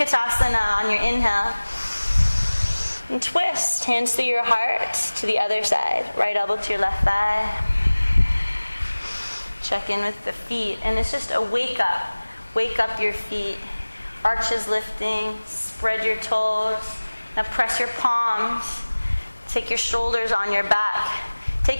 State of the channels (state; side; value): inverted; both; correlation -1.00